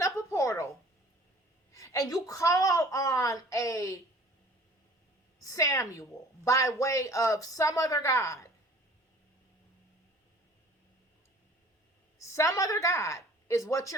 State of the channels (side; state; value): both; normal; correlation 0.49